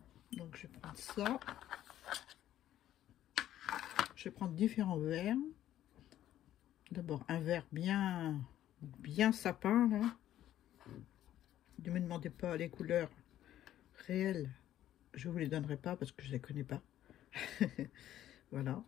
Donc je vais prendre ça. Je vais prendre différents verts. D'abord un vert bien sapin là. Ne me demandez pas les couleurs réelles. Je vous les donnerai pas parce que je les connais pas. Voilà.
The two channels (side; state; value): right; quieter; 12.3 dB